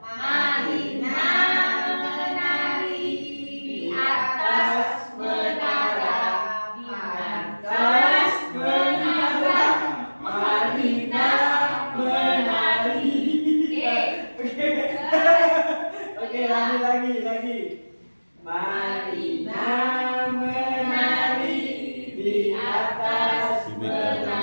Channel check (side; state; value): both; inverted; correlation -1.00